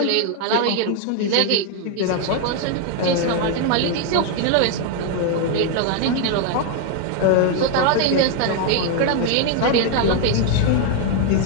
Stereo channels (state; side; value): different; both; correlation 0.00